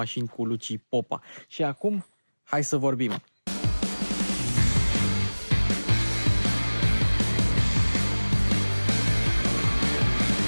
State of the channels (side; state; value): both; inverted; correlation -1.00